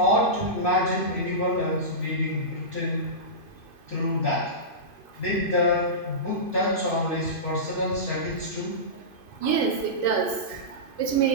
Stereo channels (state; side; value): late; right; 2.5 ms